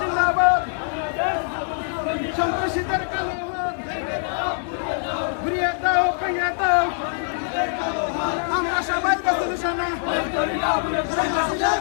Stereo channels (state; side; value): silent; right; digital silence